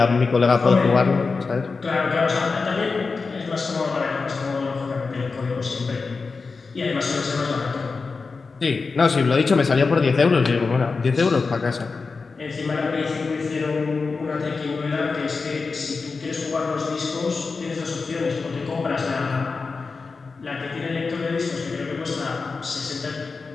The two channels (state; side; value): quieter; right; 4.4 dB